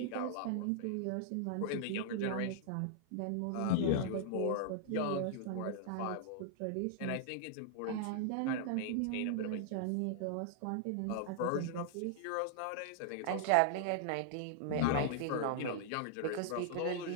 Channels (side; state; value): both; different; correlation -0.01